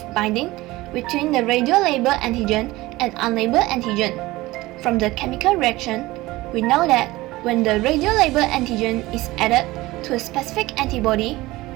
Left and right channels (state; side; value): quieter; left; 19.3 dB